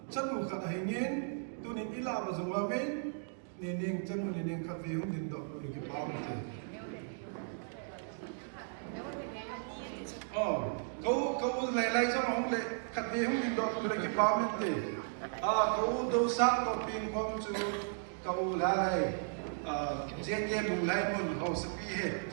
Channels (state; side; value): silent; left; digital silence